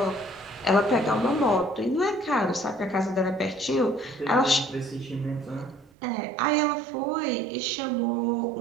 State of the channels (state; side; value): drops out; left; at 5.9 s